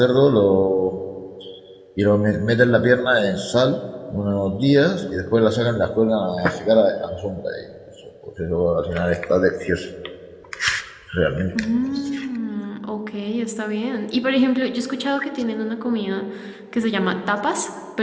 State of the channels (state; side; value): identical; both; correlation 1.00